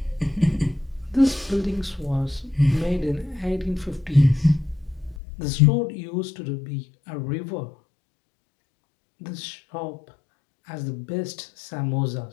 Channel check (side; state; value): right; drops out; at 5.2 s